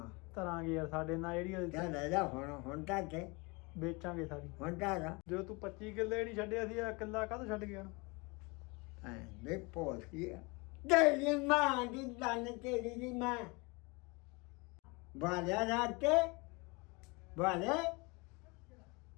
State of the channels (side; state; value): right; quieter; 27.5 dB